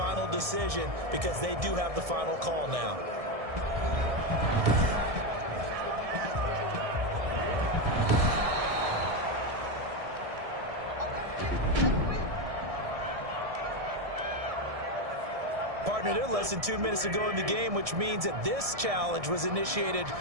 decision because they do have the final call now. Partner, they're less than 2 minutes to go in the game, which means that this challenge was initiated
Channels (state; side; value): late; left; 1.7 ms